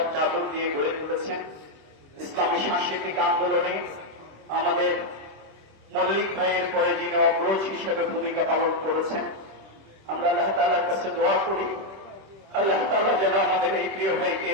চাদর দিয়ে গড়ে তুলেছেন ইসলামী সাংস্কৃতিক আন্দোলনে আমাদের মল্লিক ভাইয়ের পরে যিনি অগ্রজ হিসেবে ভূমিকা পালন করেছেন, আমরা আল্লাহ তাআলার কাছে দোয়া করি আল্লাহ তাআলা যেন আমাদের এই প্রিয় ভাইকে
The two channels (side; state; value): left; late; 26 ms